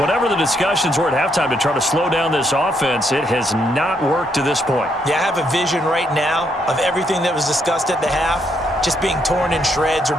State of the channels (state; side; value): normal; both; correlation 0.74